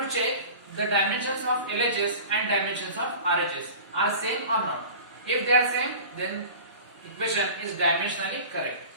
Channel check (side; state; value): both; inverted; correlation -0.38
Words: to check the dimensions of LHS and dimensions of RHS are same or not. If they are same, then equation is dimensionally correct.